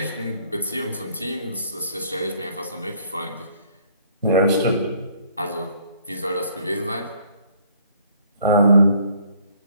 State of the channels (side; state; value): both; inverted; correlation -0.60